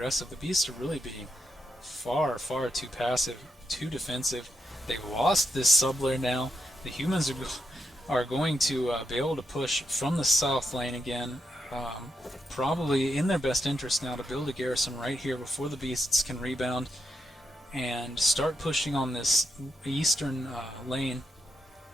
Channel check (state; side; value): normal; both; correlation 0.83